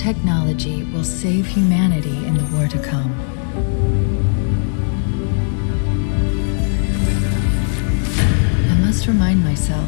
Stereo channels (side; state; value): right; silent; digital silence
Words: will save humanity in the war to come, I must remind myself,